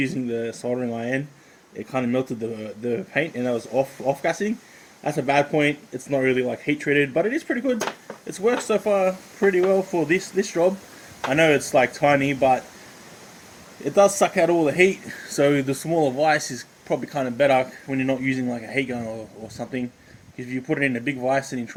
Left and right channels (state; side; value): identical; both; correlation 1.00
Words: the soldering iron, it kind of melted the paint, and I was off gassing. That's a bad point. It's not really like heat treated, but it is pretty good. It's worked so far pretty well for this job. I know it's like tiny, but it does suck out all the heat. So the smaller vise is probably kind of better when you're not using like a heat gun or something. If you put it in a big vise and you